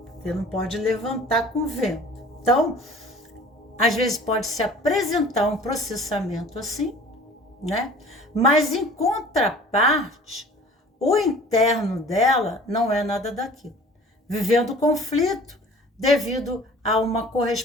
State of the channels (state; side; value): normal; both; correlation 0.47